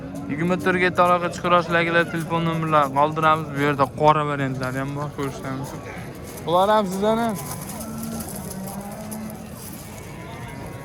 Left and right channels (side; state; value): both; identical; correlation 1.00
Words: 24 ga aloqa chiqarasizlar akalar, telefon nomerlarini qoldiramiz. Bu yerda qora variantlari ham bor, ko'rishinglar mumkin. Bular ham sizlarni.